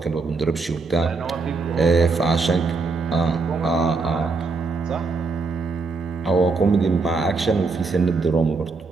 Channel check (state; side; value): quieter; left; 4.0 dB